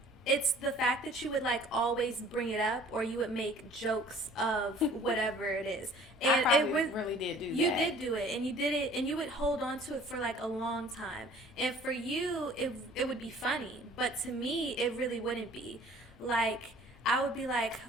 It's the fact that you would like always bring it up, or you would make jokes of whatever it is. And I probably really did do that. You did do it, and you did it, and you would hold on to it for like a long time. And for you, it would be funny, but to me, it really wouldn't be. Like, I would be like,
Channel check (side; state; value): both; normal; correlation 0.51